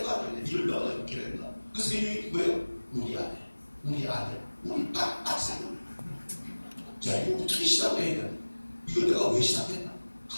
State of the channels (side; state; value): both; inverted; correlation -1.00